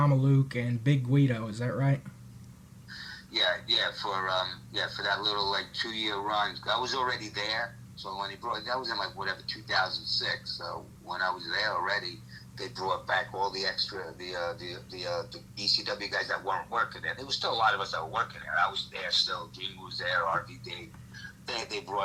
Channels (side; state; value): both; identical; correlation 1.00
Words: and Big Guido. Is that right? For that little 2-year run, I was already there. So when that was in 2006. So when I was there already, they brought back all the extra the ECW guys that weren't working there. There was still a lot of us that were working there. I was there still. Jim was there. RVD. They